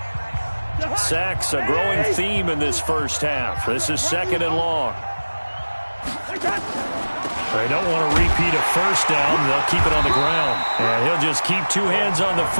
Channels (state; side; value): inverted; both; correlation -1.00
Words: Sacks, a growing theme in this first half. This is second and long. They don't want to repeat a first down. They'll keep it on the ground. And he'll just keep 2 hands on the